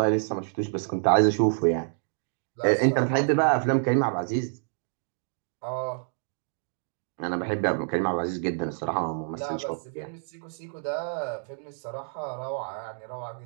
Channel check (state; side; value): silent; left; digital silence